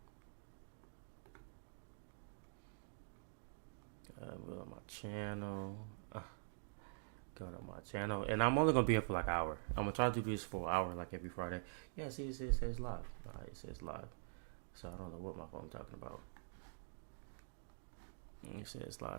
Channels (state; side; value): silent; left; digital silence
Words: go to my channel. Go to my channel, and I'm only gonna be here for like an hour. I'm gonna try to do this for an hour, like every Friday. Yeah, see, it says live. Alright, it says live. So I don't know what my phone's talking about. It says